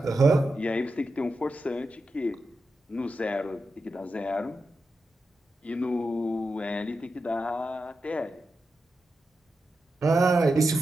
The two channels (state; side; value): normal; both; correlation 0.89